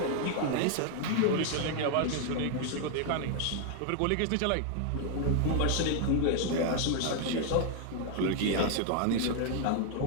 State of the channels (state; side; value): different; both; correlation 0.00